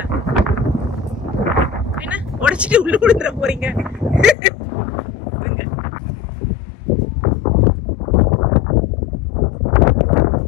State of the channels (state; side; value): drops out; right; at 4.4 s